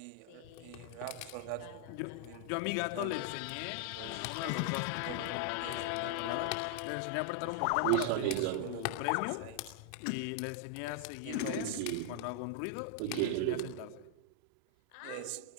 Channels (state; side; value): different; both; correlation 0.00